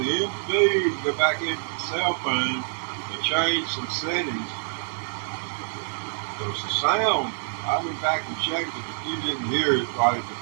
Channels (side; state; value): left; silent; 60 dB below the other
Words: the feed, go back into the cell phone and change some settings. Because the sound, I went back and checked it. If you didn't hear it right at the